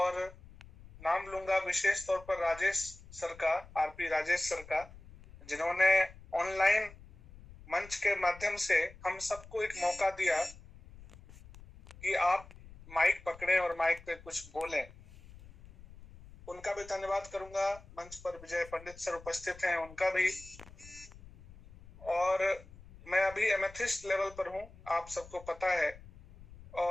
नाम लूंगा विशेष तौर पर राजेश सर का, आरपी राजेश सर का, जिन्होंने ऑनलाइन मंच के माध्यम से हम सबको एक मौका दिया कि आप माइक पकड़ें और माइक पे कुछ बोलें। उनका भी धन्यवाद करूंगा। मंच पर विजय पंडित सर उपस्थित हैं, उनका भी। और मैं अभी एमेथिस्ट लेवल पर हूं, आप सबको पता है।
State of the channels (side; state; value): left; noise; rumble, 20 dB below the sound